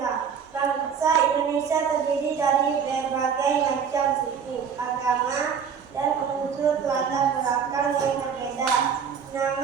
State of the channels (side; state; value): left; quieter; 7.0 dB